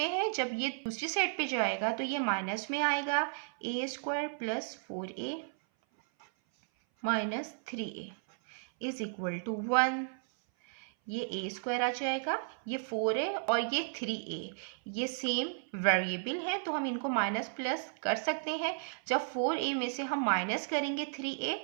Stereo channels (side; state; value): left; silent; 55 dB below the other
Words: है, जब ये दूसरी साइड पे जाएगा तो ये माइनस में आएगा, a² + 4a - 3a is equal to 1। ये a² आ जाएगा, ये 4 है और ये 3a, ये सेम वेरिएबल है तो हम इनको माइनस प्लस कर सकते हैं। जब 4a में से हम माइनस करेंगे 3a